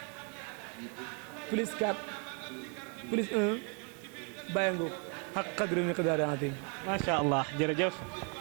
plus 4 plus 1 bàyyi nga xaq qadri miqdaari azim. macha allah jërëjëf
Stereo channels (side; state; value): left; quieter; 37.1 dB